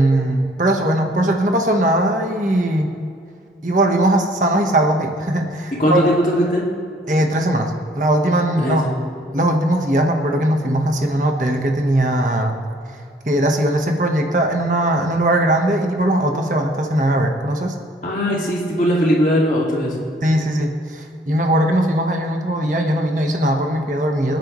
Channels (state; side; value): normal; both; correlation 0.59